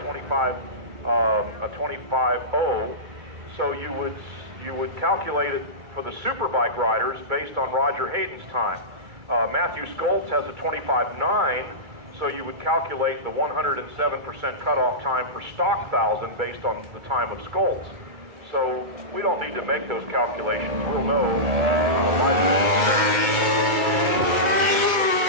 So you would calculate it for the superbike riders based on Roger Hayden's time. Matthew Skoltz has a 25.9, so you would calculate the 107% cutoff time for stock 1,000 based on the time of Skoltz. So we don't need to make those calculations. We'll know.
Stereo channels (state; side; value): late; left; 2.2 ms